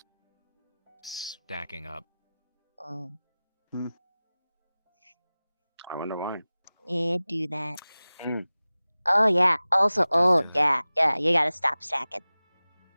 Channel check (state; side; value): inverted; both; correlation -0.98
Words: stacking up. Oh. I wonder why. Yeah, do that. Oh, yeah. Also, oh, yeah, you gotta stop stacking.